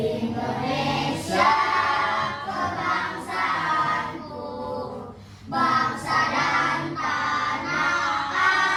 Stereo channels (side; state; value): both; identical; correlation 1.00